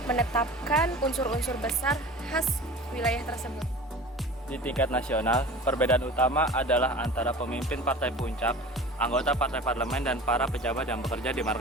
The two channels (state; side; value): normal; both; correlation 0.38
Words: menetapkan unsur-unsur besar khas wilayah tersebut. Di tingkat nasional, perbedaan utama adalah antara pemimpin partai puncak, anggota partai parlemen, dan para pejabat yang bekerja di